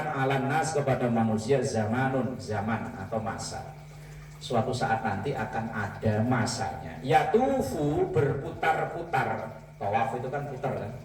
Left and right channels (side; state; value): both; identical; correlation 1.00